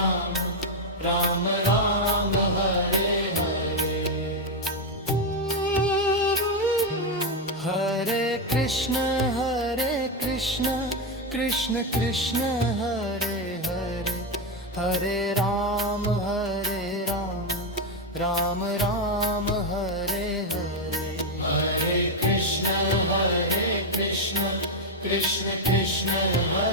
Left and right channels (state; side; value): normal; both; correlation 0.06